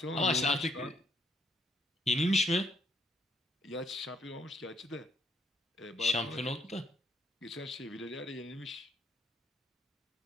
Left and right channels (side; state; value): both; normal; correlation 0.71